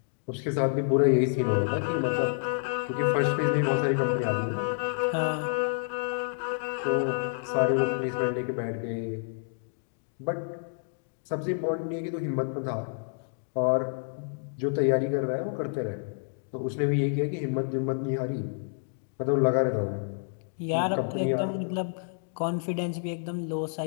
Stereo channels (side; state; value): right; silent; digital silence